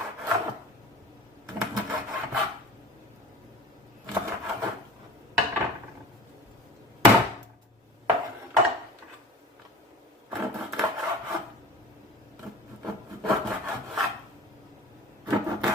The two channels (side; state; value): both; normal; correlation 0.40